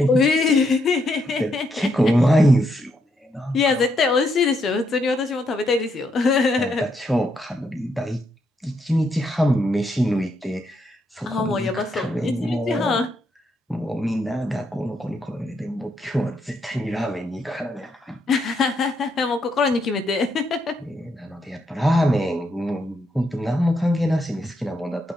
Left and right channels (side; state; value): both; normal; correlation 0.78